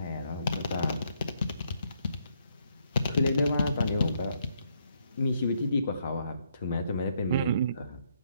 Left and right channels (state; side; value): inverted; both; correlation -0.73